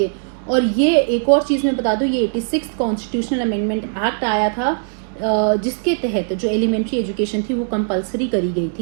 और ये एक और चीज़ मैं बता दूं, ये 86th कॉन्स्टिट्यूशनल अमेंडमेंट एक्ट आया था जिसके तहत जो एलिमेंट्री एजुकेशन थी वो कंपलसरी करी गई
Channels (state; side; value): silent; left; 66 dB below the other